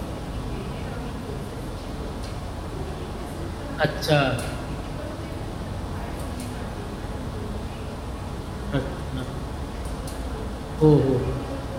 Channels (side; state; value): both; identical; correlation 1.00